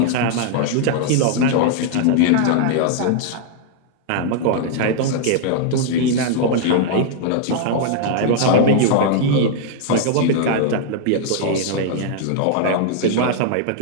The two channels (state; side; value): different; both; correlation 0.00